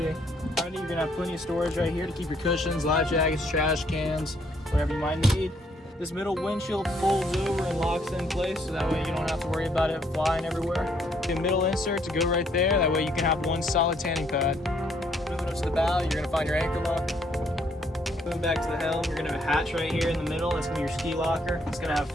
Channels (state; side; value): normal; both; correlation 0.68